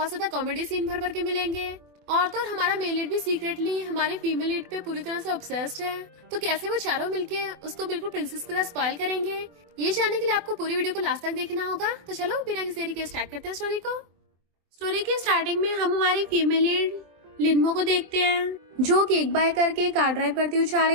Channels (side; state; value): left; late; 24 ms